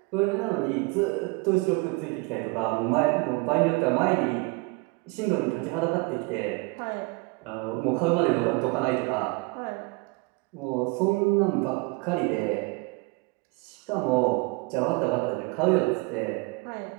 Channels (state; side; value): quieter; left; 26.8 dB